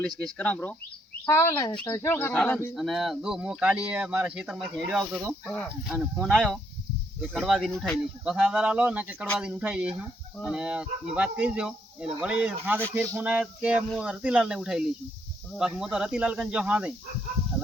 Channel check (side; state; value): both; normal; correlation 0.73